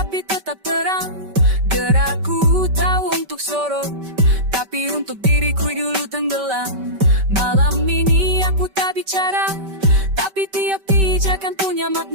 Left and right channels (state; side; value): late; left; 5.2 ms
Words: tetap terang. Gerakku tahu untuk sorot, tapi untuk diriku dulu tenggelam. Malam ini aku tak bicara, tapi tiap pijakan punya